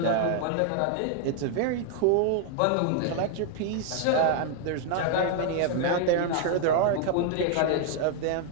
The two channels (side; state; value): both; different; correlation 0.00